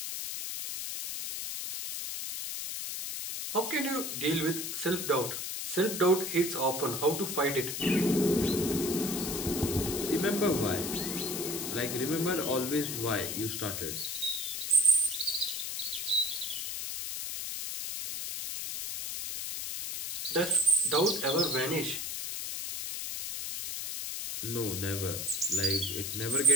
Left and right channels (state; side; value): noise; left; hiss, 4 dB below the sound